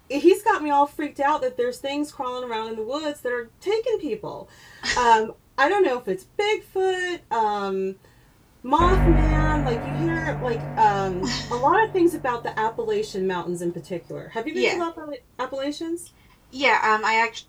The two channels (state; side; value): identical; both; correlation 1.00